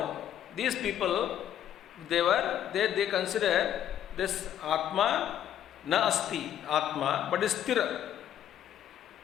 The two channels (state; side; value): quieter; right; 10.6 dB